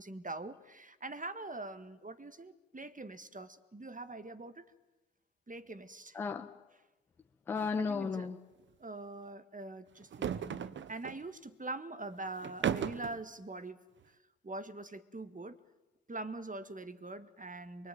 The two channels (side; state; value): both; normal; correlation 0.34